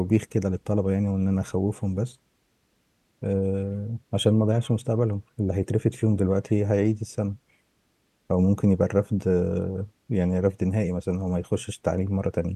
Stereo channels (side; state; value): both; identical; correlation 1.00